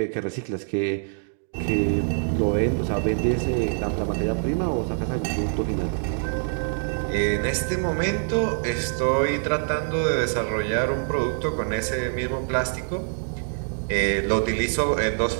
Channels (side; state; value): left; silent; 62 dB below the other